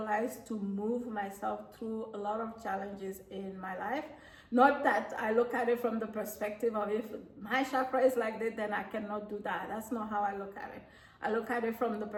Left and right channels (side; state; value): both; identical; correlation 1.00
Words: to move myself through a lot of challenges in my life. Not that I look at it from the perspective of if my chakra is like this, then I cannot do that. That's not how I look at it. I look at it from the